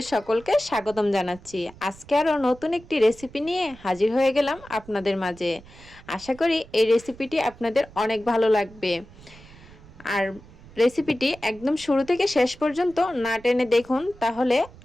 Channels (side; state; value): right; noise; rumble, 21 dB below the sound